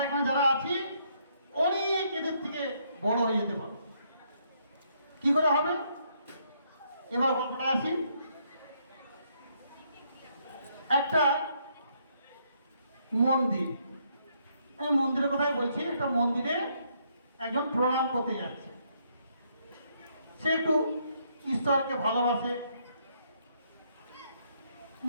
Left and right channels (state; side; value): inverted; both; correlation -0.72